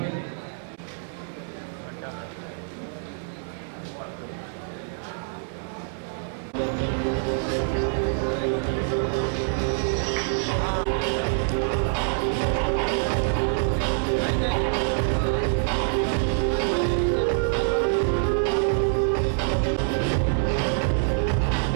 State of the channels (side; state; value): left; silent; 61 dB below the other